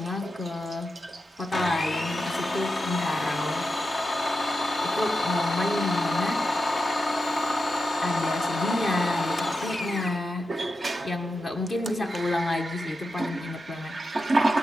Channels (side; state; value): both; normal; correlation 0.89